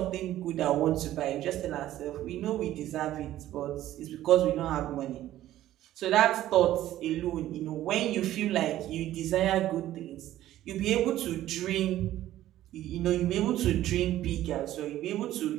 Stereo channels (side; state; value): left; quieter; 13.6 dB